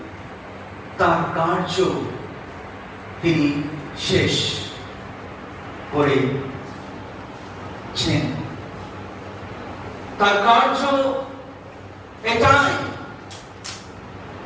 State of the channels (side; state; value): both; identical; correlation 1.00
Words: তার কার্য তিনি শেষ করেছেন। তার কার্য এটাই